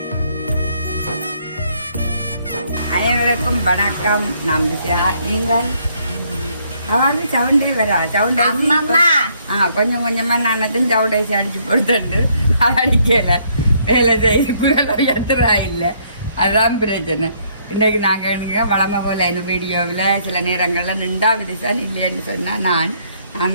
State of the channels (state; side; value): inverted; both; correlation -0.68